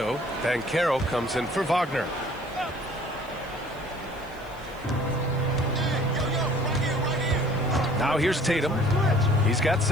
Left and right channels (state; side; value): noise; right; hiss, 27 dB below the sound